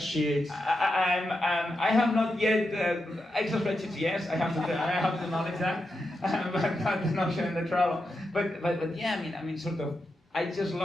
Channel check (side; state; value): both; normal; correlation 0.87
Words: I have not yet Excel spreadsheets. Yes, I have to acknowledge that, but not the Notion and the Trello. But yeah, I mean, sort of. I just